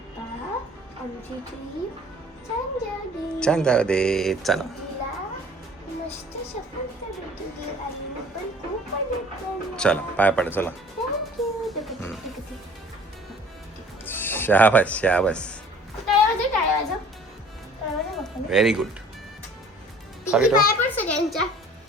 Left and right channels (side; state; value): both; normal; correlation 0.50